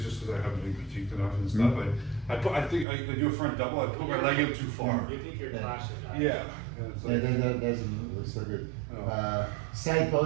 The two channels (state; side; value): drops out; left; at 2.9 s